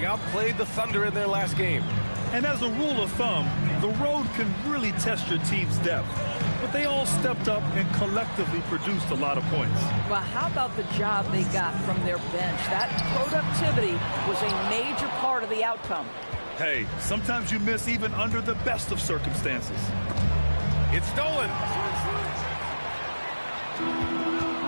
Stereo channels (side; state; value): both; inverted; correlation -1.00